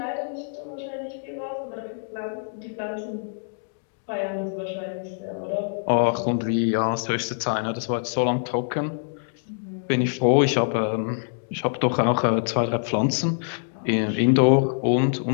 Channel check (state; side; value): silent; right; digital silence